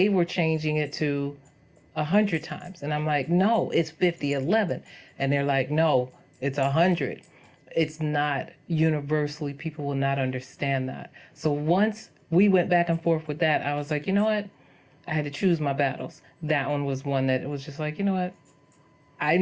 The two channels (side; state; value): both; identical; correlation 1.00